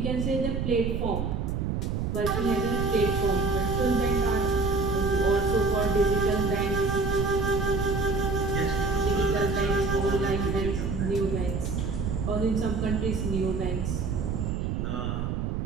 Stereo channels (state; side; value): noise; right; rumble, 1 dB below the sound